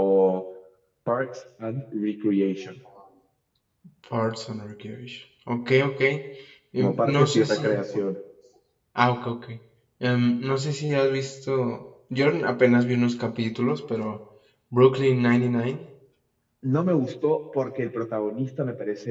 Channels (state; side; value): identical; both; correlation 1.00